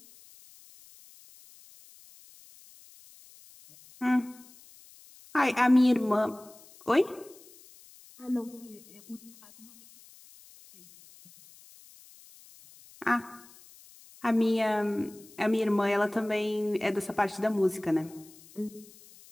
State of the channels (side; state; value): left; noise; hiss, 23 dB below the sound